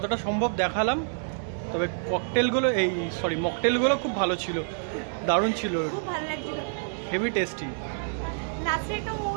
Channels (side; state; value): left; silent; digital silence